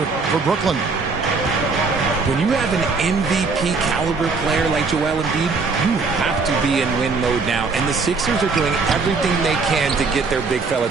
for Brooklyn. When you have an MVP caliber player like Joel Embiid, you have to be in win mode now. And the Sixers are doing everything they can to get their big fella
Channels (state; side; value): quieter; left; 4.4 dB